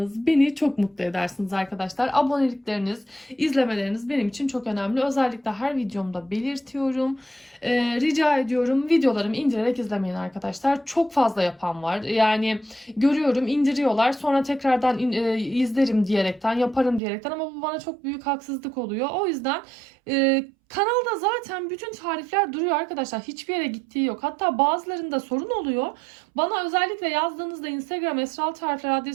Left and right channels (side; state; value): left; drops out; at 17.0 s